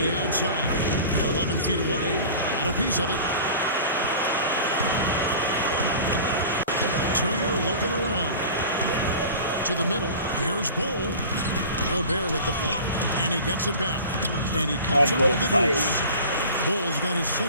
outside. 11 feet away. Got a piece of it. Turner looking around. To the middle. Here's Bol. Gobert with the block. And he gets it back. And he comes up with the deuce. Bol's got his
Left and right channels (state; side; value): inverted; both; correlation -0.39